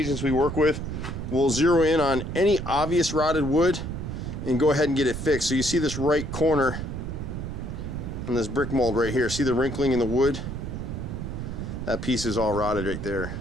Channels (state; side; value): noise; right; rumble, 6 dB below the sound